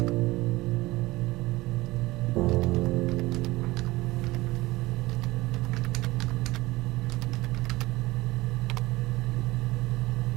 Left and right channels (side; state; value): left; quieter; 19.8 dB